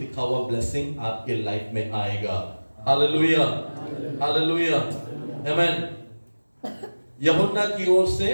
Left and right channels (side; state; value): both; inverted; correlation -1.00